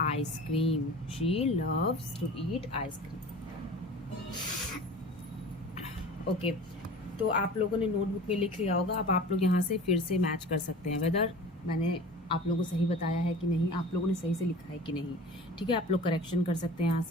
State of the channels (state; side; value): normal; both; correlation 0.39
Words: ice cream. She loves to eat ice cream. Okay तो आप लोगों ने नोटबुक में लिख लिया होगा. अब आप लोग यहाँ से फिर से मैच कर सकते हैं वेदर मैंने आप लोगों को सही बताया है कि नहीं, आप लोगों ने सही से लिखा है कि नहीं. ठीक है, आप लोग करेक्शन कर सकते हैं यहाँ